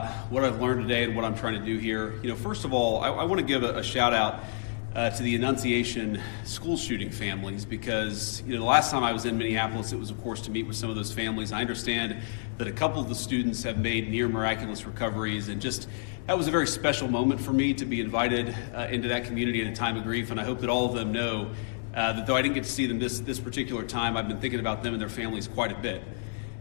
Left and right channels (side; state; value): right; silent; digital silence